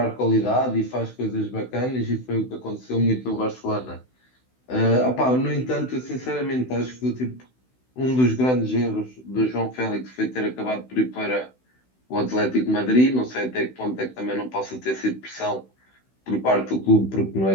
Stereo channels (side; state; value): right; late; 16 ms